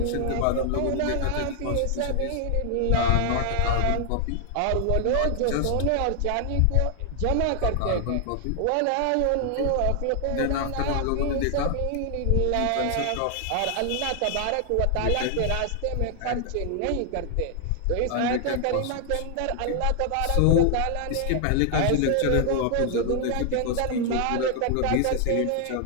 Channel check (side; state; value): both; different; correlation 0.00